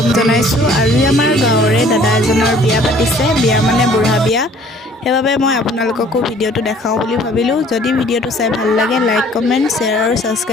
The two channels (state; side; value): normal; both; correlation 0.55